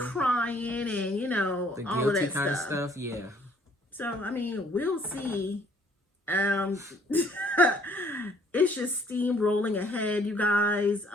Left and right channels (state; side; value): normal; both; correlation 0.62